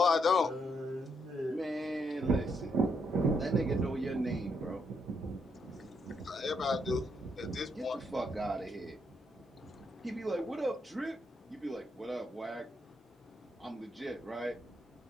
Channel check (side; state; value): both; normal; correlation 0.76